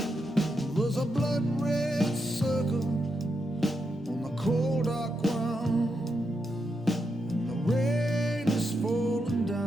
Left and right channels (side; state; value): both; normal; correlation 0.84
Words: There's a blood red circle on the cold dark ground, and the rain is falling